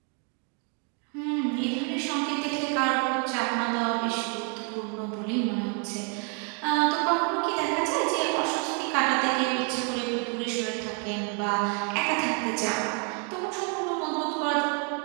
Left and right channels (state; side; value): quieter; left; 37.7 dB